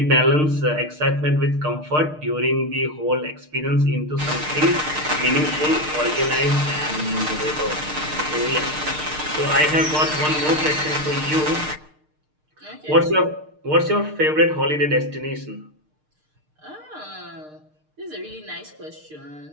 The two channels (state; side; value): late; left; 6.6 ms